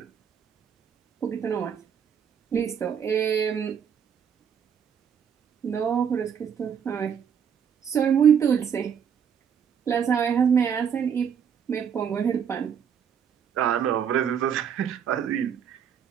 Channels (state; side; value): quieter; left; 7.8 dB